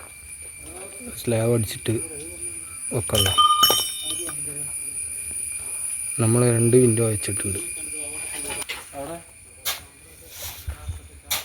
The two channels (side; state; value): both; identical; correlation 1.00